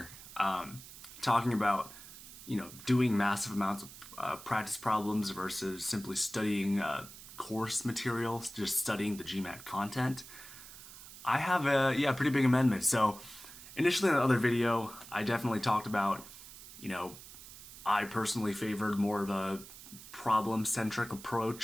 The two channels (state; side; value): noise; right; hiss, 16 dB below the sound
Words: talking about doing massive amounts of practice problems versus simply studying course materials, just studying the GMAT content. I have a pretty big amendment. So initially in the other video, I definitely talked about you know I personally favored more of a problem-centric